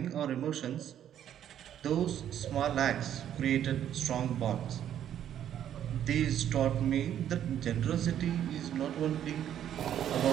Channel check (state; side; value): quieter; left; 10.3 dB